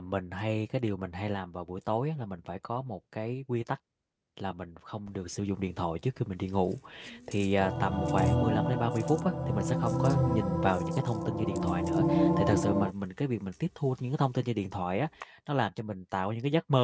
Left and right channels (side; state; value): both; identical; correlation 1.00